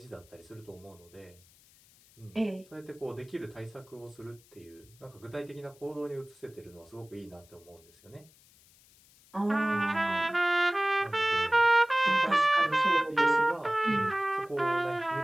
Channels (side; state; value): left; noise; hiss, 28 dB below the sound